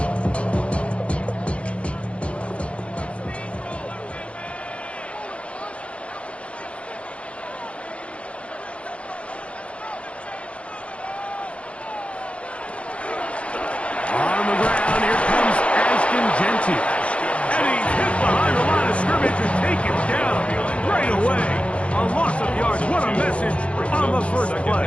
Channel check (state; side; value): late; right; 0.061 ms